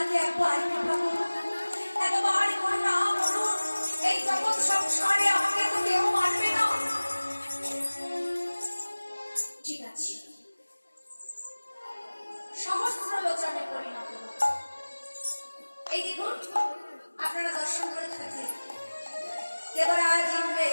সংসারে আমাকে তো কেউ মানবে না। ঠিক আছে, সহস্র লোচনে পরিণত। এই দেখুন আপনারা দর্শন করে থাকলেন দেবরাজ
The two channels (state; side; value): inverted; both; correlation -1.00